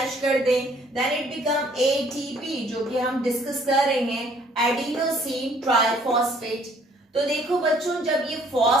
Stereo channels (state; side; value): normal; both; correlation 0.60